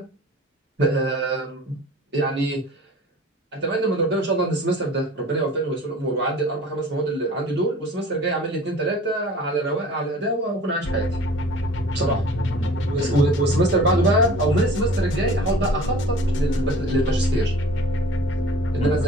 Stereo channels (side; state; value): both; normal; correlation 0.45